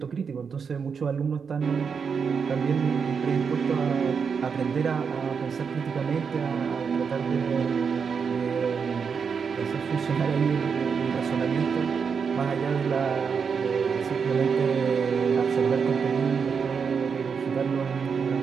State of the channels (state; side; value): quieter; left; 6.1 dB